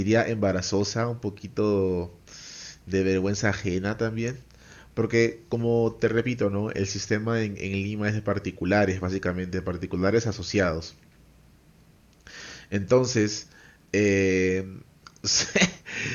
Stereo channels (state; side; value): identical; both; correlation 1.00